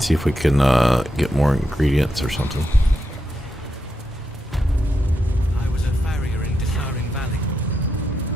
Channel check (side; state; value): both; normal; correlation 0.85